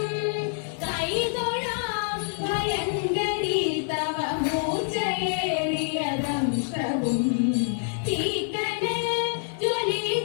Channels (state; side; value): silent; right; 61 dB below the other